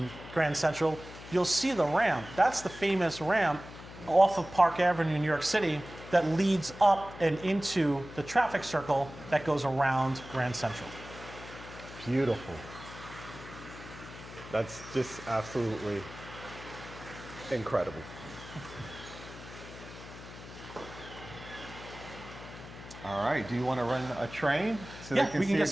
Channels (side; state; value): left; noise; hum, 15 dB below the sound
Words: Grand Central, you'll see the ramp. That's the famous ramp off of Park Avenue in New York City that leads up and into the traffic circle that goes around Grand Central. Beautiful. That's just absolutely incredible. All right, do you want to run a train? So Yeah, we can get